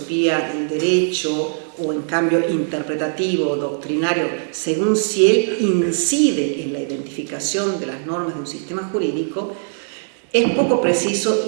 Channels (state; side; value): silent; left; digital silence